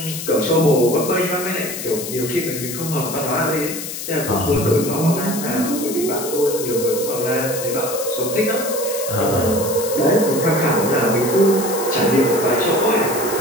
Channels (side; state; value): left; noise; hiss, 7 dB below the sound